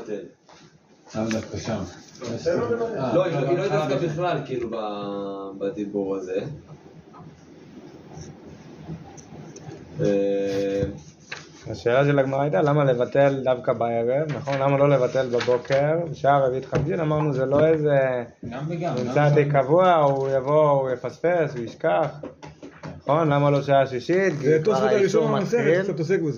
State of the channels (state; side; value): identical; both; correlation 1.00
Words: למה דווקא שם? לא, היא לא התעסקה בכלל כאילו בדיבור הזה. השאלה של הגמרא הייתה למה לבטל דווקא בערב, נכון? למה לא לבטל בבוקר? בשעה רביעית חמישית אמרנו זה לא איזה נמצא די קבוע, הוא יבוא, הוא יפספס, הוא ישכח, נכון? למה לא שעה שישית? זה תוספות הראשון במסכת, קצת עוסק